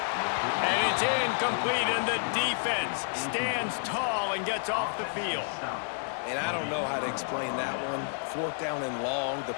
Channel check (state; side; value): silent; right; 56 dB below the other